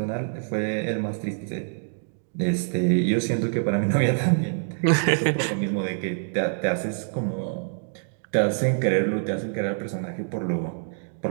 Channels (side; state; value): left; silent; digital silence